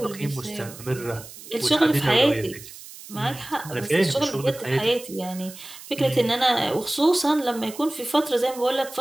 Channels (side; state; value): right; noise; hiss, 16 dB below the sound